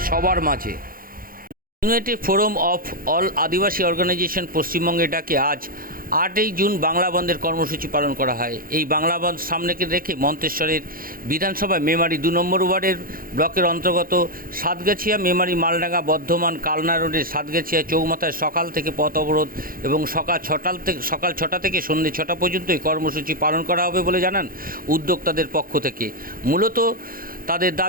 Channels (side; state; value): left; late; 0.42 ms